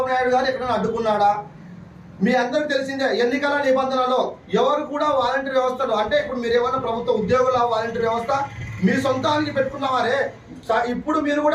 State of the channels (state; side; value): identical; both; correlation 1.00